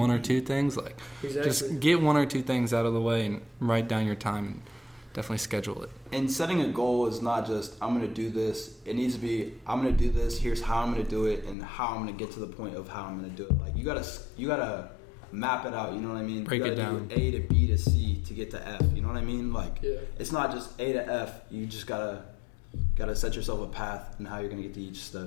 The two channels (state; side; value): drops out; right; at 11.6 s